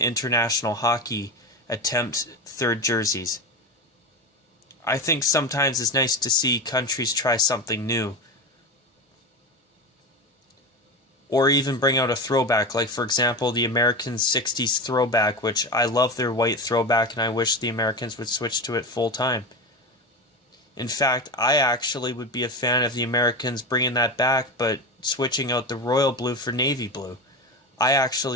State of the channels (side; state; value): both; normal; correlation 0.23